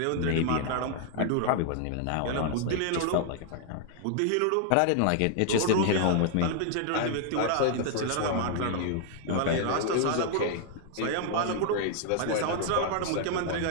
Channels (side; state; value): both; different; correlation 0.00